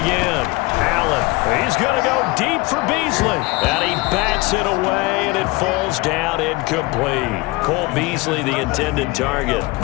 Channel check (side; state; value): right; quieter; 23.0 dB